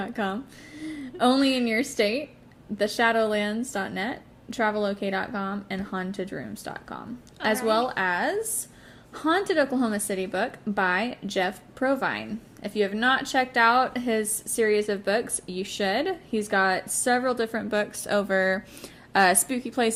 only in your state, theshadowlands.net, travelok.com, and hauntedrooms.com, as Alright. well as Haunted Oklahoma City book by Jeff Provine. If you have not checked out his series of books, you should. He's got several different books over spooky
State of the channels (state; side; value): identical; both; correlation 1.00